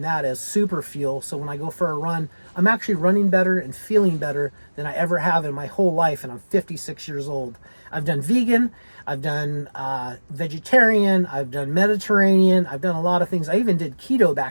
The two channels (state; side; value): inverted; both; correlation -1.00